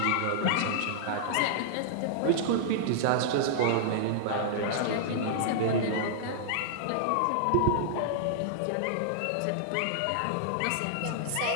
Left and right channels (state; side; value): different; both; correlation -0.01